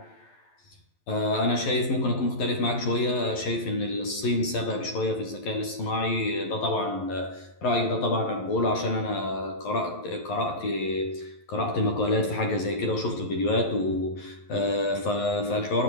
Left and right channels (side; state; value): right; late; 11 ms